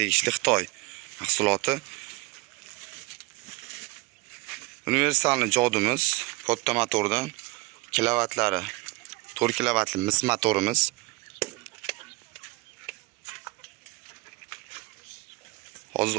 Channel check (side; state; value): left; quieter; 23.2 dB